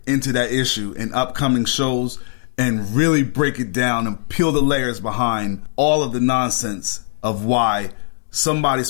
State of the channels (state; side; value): silent; right; 66 dB below the other